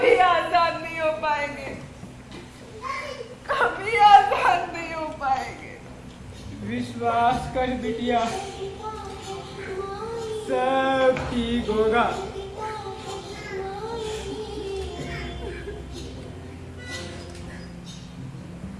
आजाद नहीं हो पाएंगे, कभी आजाद नहीं हो पाएंगे। विश्वास कर बिटिया, सब ठीक होगा।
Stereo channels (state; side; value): identical; both; correlation 1.00